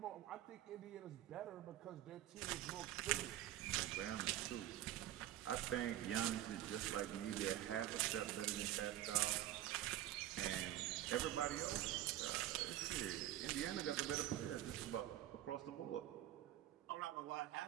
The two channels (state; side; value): quieter; left; 13.1 dB